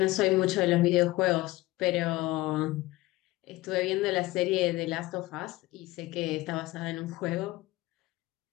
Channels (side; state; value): right; quieter; 19.1 dB